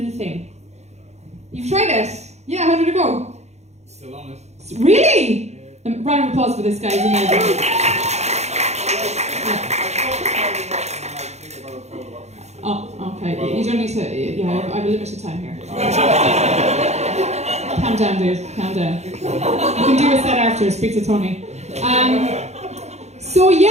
thing. You've tried it? Yeah, how did it go? Still on it. Really? Round of applause for this guy, he's amazing. Oh, okay, you don't need to, yeah, I have a limited time here. Calm down, dude. Calm down. You can do a set after. Speak to Tony. So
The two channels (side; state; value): left; late; 0.32 ms